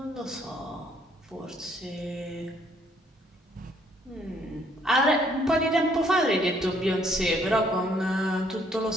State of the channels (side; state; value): both; normal; correlation 0.66